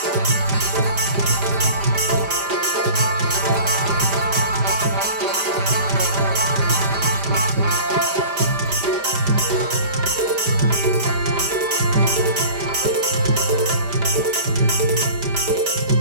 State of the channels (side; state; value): left; late; 5.0 ms